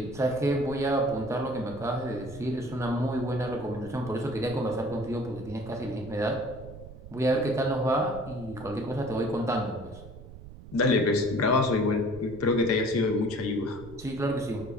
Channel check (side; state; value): right; noise; rumble, 16 dB below the sound